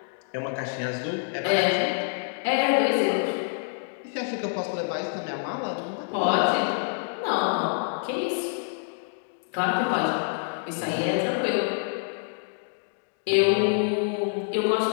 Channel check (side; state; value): right; silent; digital silence